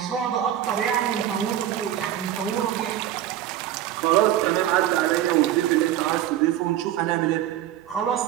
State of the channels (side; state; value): left; quieter; 12.0 dB